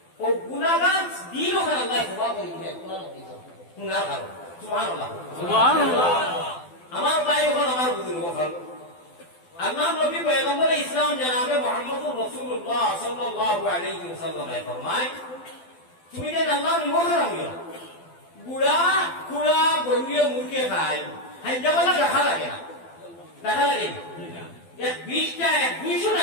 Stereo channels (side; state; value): right; late; 12 ms